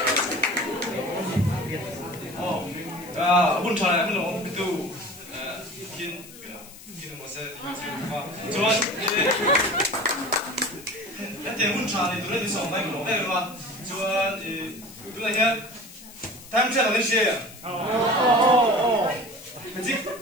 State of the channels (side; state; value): left; noise; hiss, 18 dB below the sound